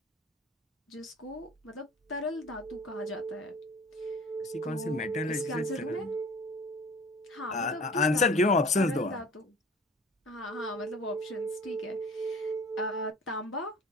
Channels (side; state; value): both; normal; correlation 0.45